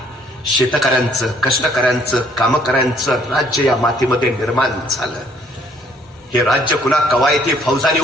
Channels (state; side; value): normal; both; correlation 0.63